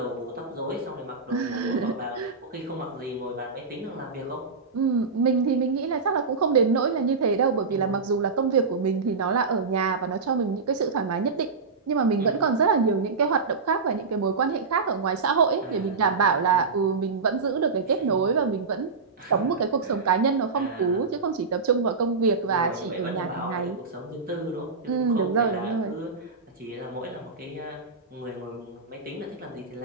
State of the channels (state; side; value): quieter; left; 4.5 dB